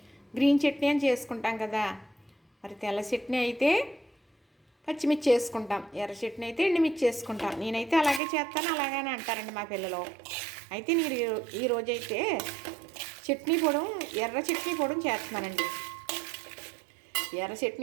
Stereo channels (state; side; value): drops out; left; at 8.2 s